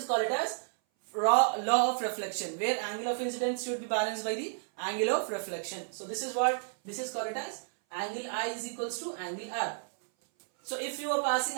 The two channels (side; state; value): left; silent; 57 dB below the other